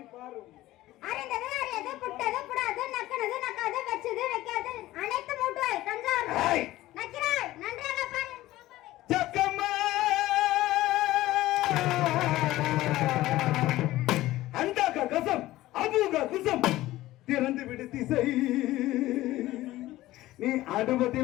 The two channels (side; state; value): right; quieter; 16.4 dB